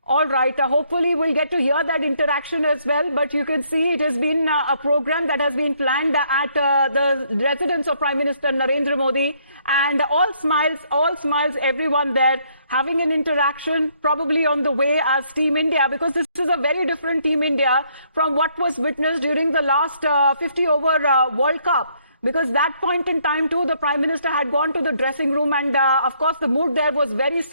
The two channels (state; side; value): inverted; both; correlation -0.69